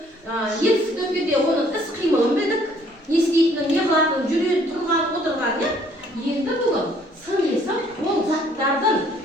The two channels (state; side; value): normal; both; correlation 0.61